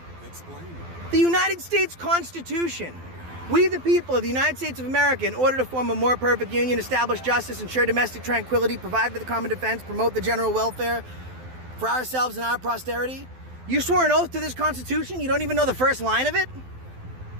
Explain. The United States Constitution. We the people of the United States of America, in order to form a more perfect union, establish justice, ensure domestic tranquility, provide for the common defense, promote the general welfare for ourselves and our posterity. You swore an oath to this Constitution? You don't even know the first line of it?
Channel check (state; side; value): late; left; 12 ms